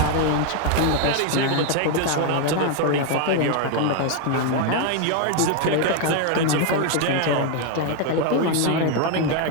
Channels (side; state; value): both; different; correlation 0.01